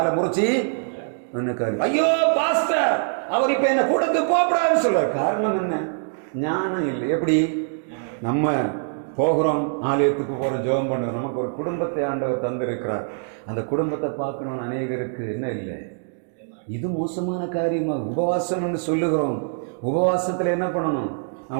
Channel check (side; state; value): left; silent; digital silence